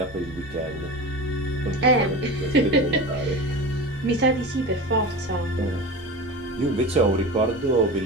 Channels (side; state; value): both; normal; correlation 0.29